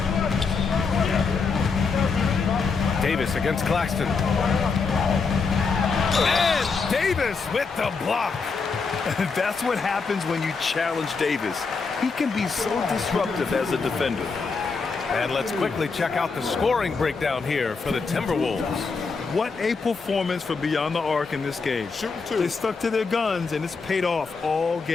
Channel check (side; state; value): right; quieter; 4.8 dB